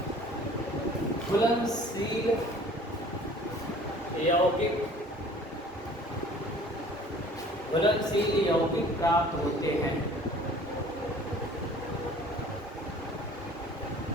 घुलनशील यौगिक, घुलनशील यौगिक प्राप्त होते हैं।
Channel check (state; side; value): normal; both; correlation 0.49